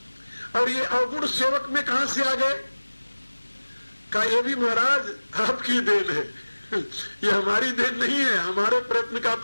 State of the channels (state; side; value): inverted; both; correlation -1.00